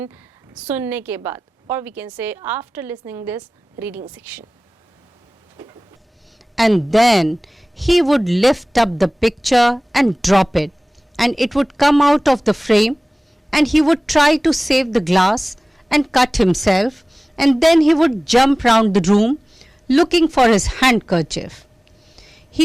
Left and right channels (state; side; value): normal; both; correlation 0.98